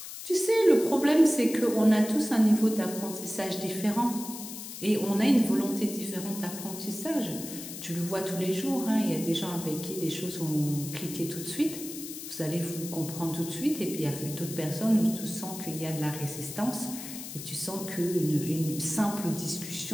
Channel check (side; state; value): left; noise; hiss, 10 dB below the sound